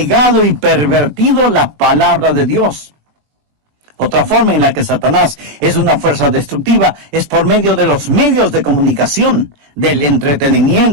y pervertido la palabra de Dios. Otra forma en la que Satanás es una fuerza destructiva es por medio de los medios de comunicación, del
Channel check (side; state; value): left; late; 20 ms